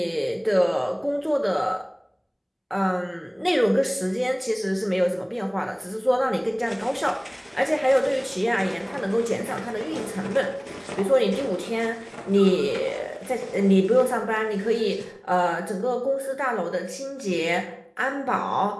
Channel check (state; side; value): identical; both; correlation 1.00